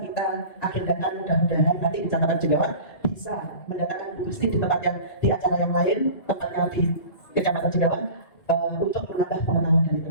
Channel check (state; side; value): late; right; 2.2 ms